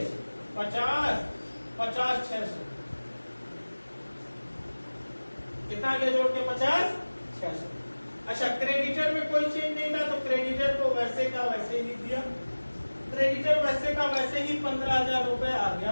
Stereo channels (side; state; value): both; inverted; correlation -1.00